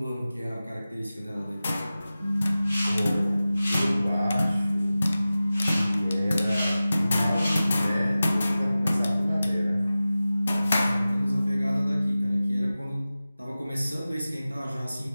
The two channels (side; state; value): both; inverted; correlation -0.96